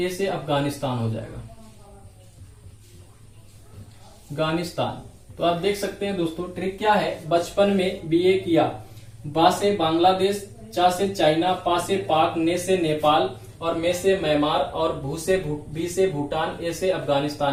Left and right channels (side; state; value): both; identical; correlation 1.00